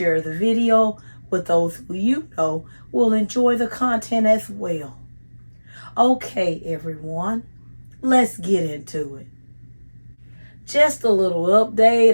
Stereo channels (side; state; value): both; inverted; correlation -1.00